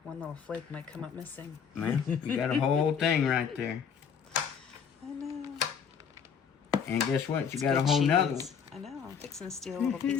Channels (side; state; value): right; quieter; 7.0 dB